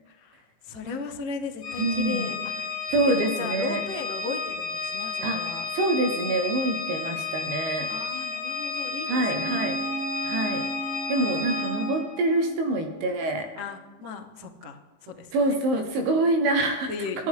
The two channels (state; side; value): late; left; 19 ms